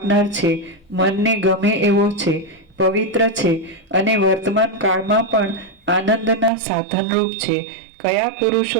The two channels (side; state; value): left; drops out; at 6.5 s